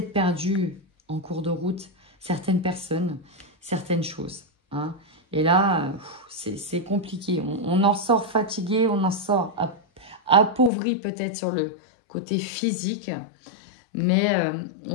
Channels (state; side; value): drops out; right; at 10.7 s